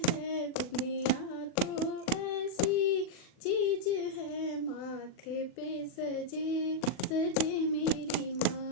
है, बिंदिया तो ऐसी चीज है, माथे पे सजे सजे मेरी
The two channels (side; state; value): right; late; 39 ms